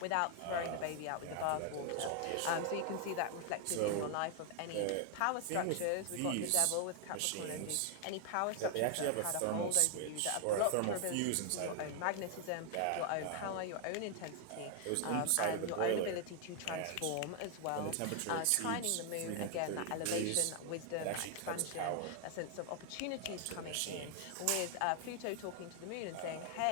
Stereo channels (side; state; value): both; different; correlation 0.00